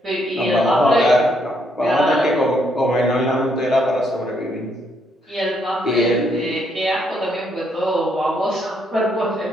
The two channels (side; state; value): both; normal; correlation 0.73